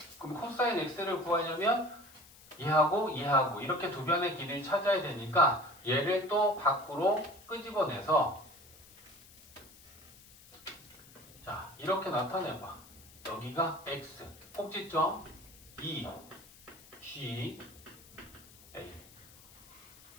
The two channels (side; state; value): left; noise; hiss, 22 dB below the sound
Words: 그럼 코사인 x를 구하려면 얘하고 이렇게 두 변의 길이를 찾아야 되니까 얘를 또 밖으로 끄집어내서 자 이렇게 나타내봐. 여기가 x 꼭지점 2 G A.